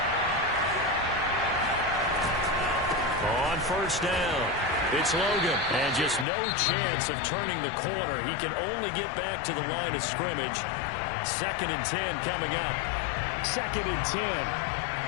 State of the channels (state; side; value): drops out; right; at 6.2 s